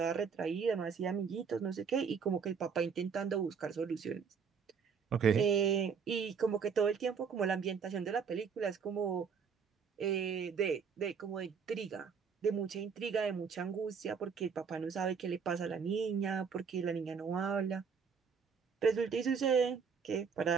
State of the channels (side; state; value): left; quieter; 6.2 dB